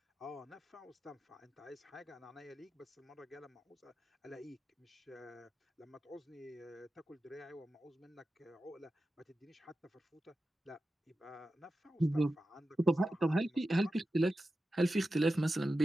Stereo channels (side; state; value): both; normal; correlation 0.92